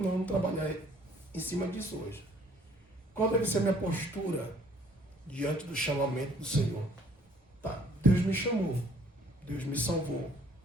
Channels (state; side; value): normal; both; correlation 0.59